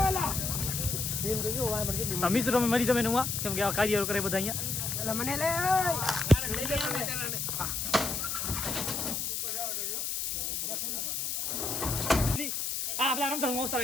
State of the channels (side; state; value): left; noise; hiss, 1 dB below the sound